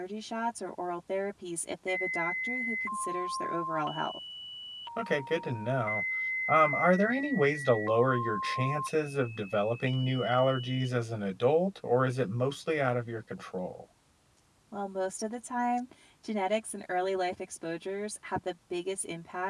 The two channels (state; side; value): identical; both; correlation 1.00